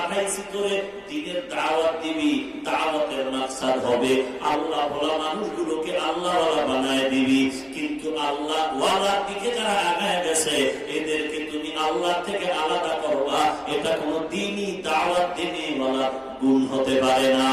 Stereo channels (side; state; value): both; identical; correlation 1.00